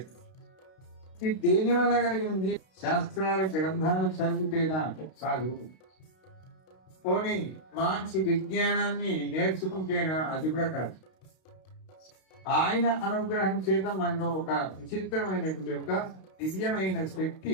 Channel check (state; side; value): late; right; 32 ms